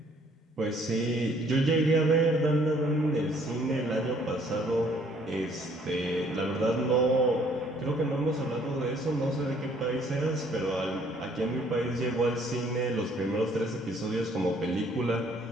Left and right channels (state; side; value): normal; both; correlation 0.61